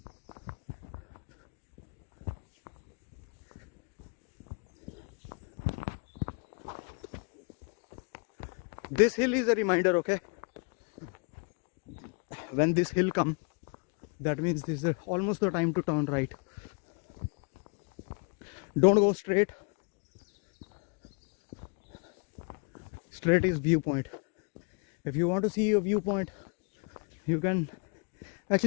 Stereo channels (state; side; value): quieter; right; 36.1 dB